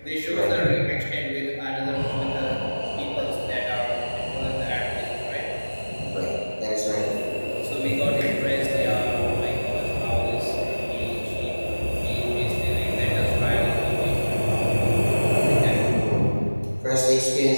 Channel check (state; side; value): inverted; both; correlation -1.00